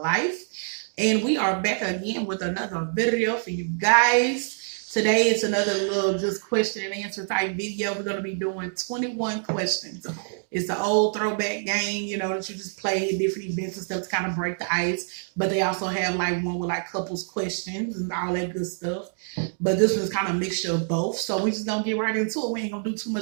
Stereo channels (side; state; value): left; silent; digital silence